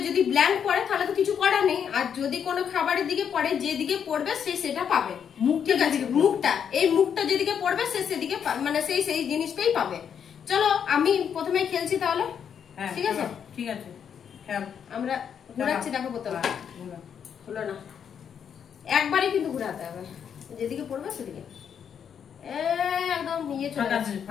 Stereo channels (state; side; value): quieter; right; 7.9 dB